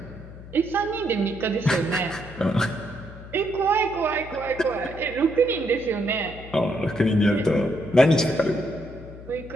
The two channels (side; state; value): left; noise; hum, 16 dB below the sound